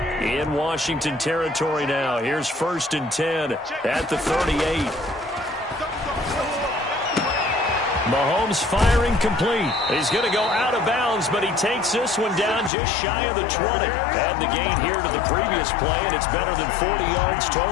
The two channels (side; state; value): right; drops out; at 12.7 s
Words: In Washington territory now. Here's 1st and 10 at the 38. Mahomes firing complete. He's going to go out of bounds, but he takes this one down just shy of the 20. Add the gain here to the previous play, and it's better than 40 yards